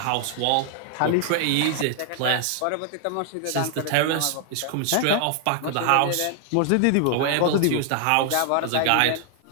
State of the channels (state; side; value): different; both; correlation 0.00